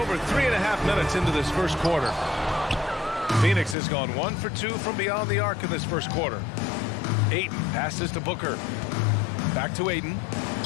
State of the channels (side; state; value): right; drops out; at 3.8 s